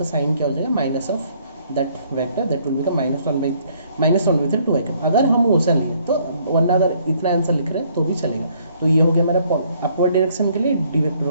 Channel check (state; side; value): inverted; both; correlation -0.65